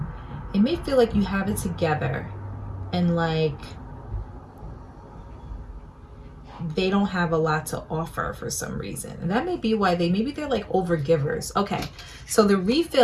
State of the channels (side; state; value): both; identical; correlation 1.00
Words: It may feel like you have it together, and like they don't have a lot to offer for some reason. And that may be why maybe they're like overgivers. Okay, so the